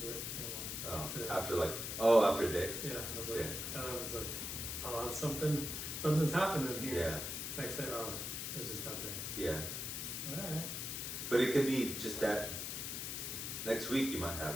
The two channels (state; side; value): noise; left; hiss, 4 dB below the sound